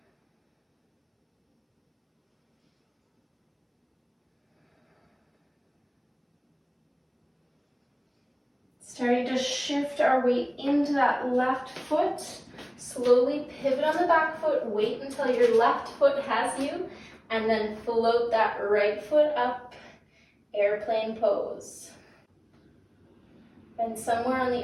Starting to shift our weight into that left foot. Slowly pivot on the back foot, wait until your left foot has you, and then float that right foot up, airplane pose. Find somewhere on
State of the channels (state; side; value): identical; both; correlation 1.00